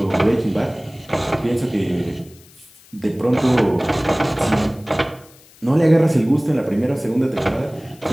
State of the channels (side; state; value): left; noise; hiss, 26 dB below the sound